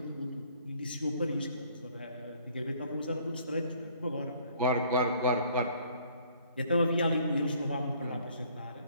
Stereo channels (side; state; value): both; inverted; correlation -0.60